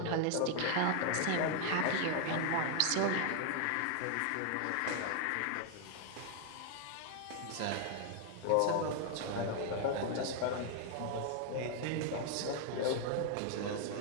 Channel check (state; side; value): different; both; correlation 0.00